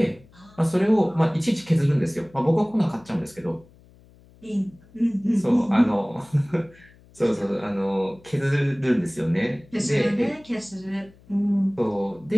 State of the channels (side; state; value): left; noise; hum, 27 dB below the sound